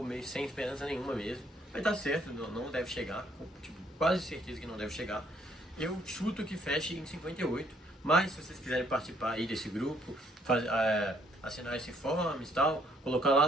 meio sem esperança nenhuma mesmo. Vai dar certo, não deve chegar. Tipo, quase certeza que não deve chegar. Eu chuto que feche em 58. Mas se vocês quiserem participar aí desse grupo, assinar esse forms e tal, colocar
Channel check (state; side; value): normal; both; correlation 0.67